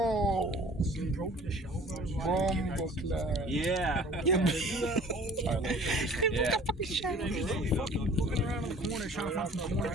He broke the shell. Bomboclat. Yeah. Yeah. Yeah. Looking around in the corner, trying to find some corner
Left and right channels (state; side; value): normal; both; correlation 0.49